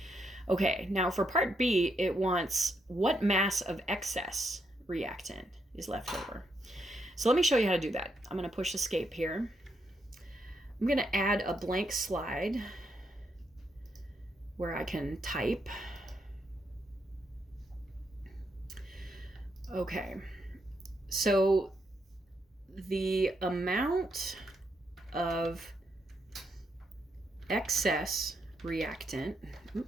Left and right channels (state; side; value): normal; both; correlation 0.79